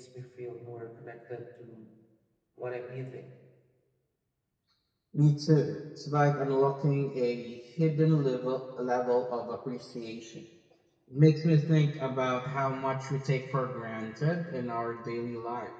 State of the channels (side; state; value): both; identical; correlation 1.00